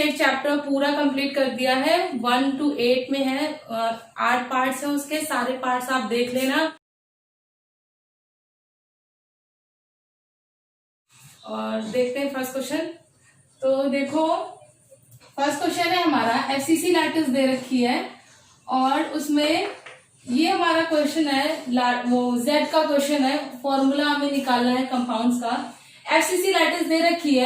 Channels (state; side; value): identical; both; correlation 1.00